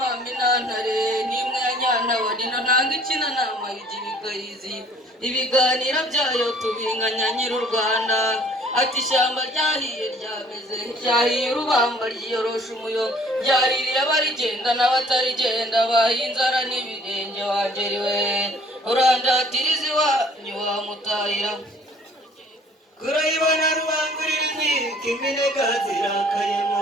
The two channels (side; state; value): both; normal; correlation 0.56